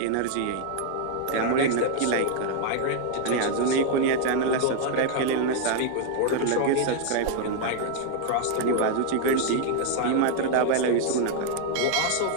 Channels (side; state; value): both; different; correlation 0.00